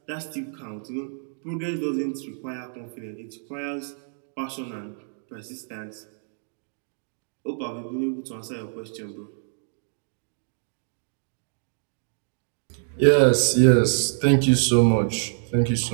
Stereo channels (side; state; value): left; silent; digital silence